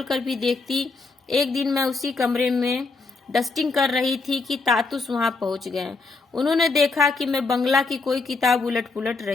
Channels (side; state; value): right; quieter; 3.9 dB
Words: कर भी देखती। एक दिन मैं उसी कमरे में डस्टिंग कर रही थी कि तातुस वहां पहुंच गए। उन्होंने देखा कि मैं बंगला की कोई किताब उलट पुलट